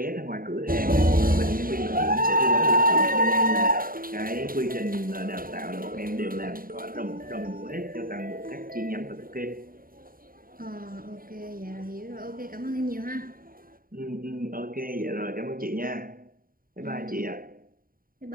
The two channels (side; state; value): left; late; 0.41 ms